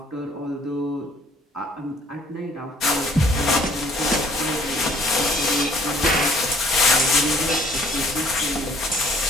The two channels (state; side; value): normal; both; correlation 0.59